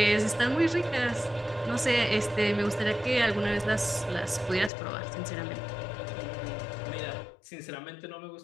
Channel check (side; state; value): right; drops out; at 4.7 s